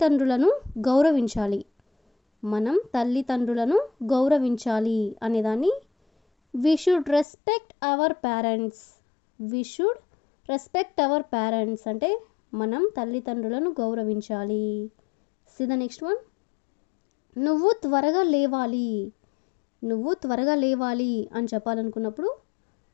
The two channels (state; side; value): drops out; right; at 7.2 s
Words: గౌరవించాలి. మనం తల్లిదండ్రులను గౌరవించాలి అనేదాన్ని we should respect our parents. We should respect our parents అంటే మనం తల్లిదండ్రులను గౌరవించాలి. సి ద నెక్స్ట్ వన్, నువ్వు త్వరగా లేవాలి. నువ్వు త్వరగా లేవాలి అని చెప్పాలనుకున్నప్పుడు